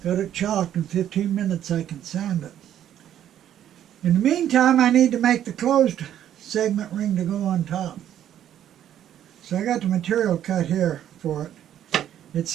Got it chalked. In 15 minutes I can sand it. In the meantime, I need to make the closed segment ring to go on top. So I got the material cut here for it. It's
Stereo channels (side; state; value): left; quieter; 10.8 dB